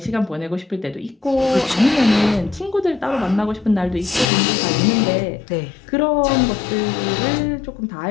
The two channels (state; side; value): drops out; right; at 4.2 s